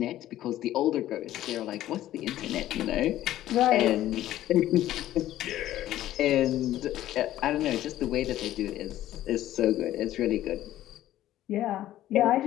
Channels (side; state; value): right; quieter; 13.6 dB